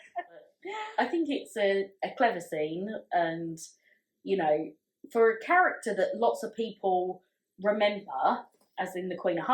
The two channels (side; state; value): both; identical; correlation 1.00